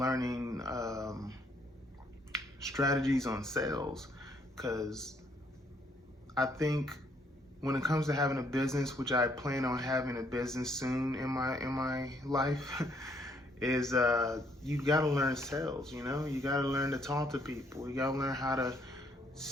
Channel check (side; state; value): both; normal; correlation 0.68